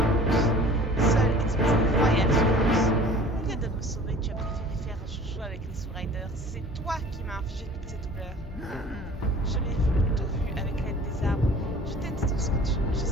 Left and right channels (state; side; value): normal; both; correlation 0.47